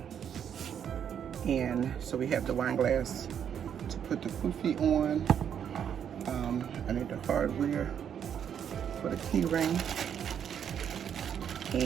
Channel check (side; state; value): left; quieter; 8.5 dB